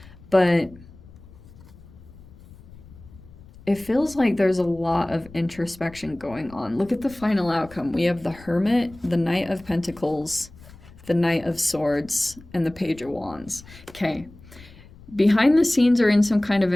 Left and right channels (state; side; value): noise; left; rumble, 21 dB below the sound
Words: but it feels like there's a lot of introspection going on. Look at the final outcome. We have the Hermit, the Knight of Pentacles, the Knight of Swords, and the Page of Wands. Okay. Behind the scenes or in some kind of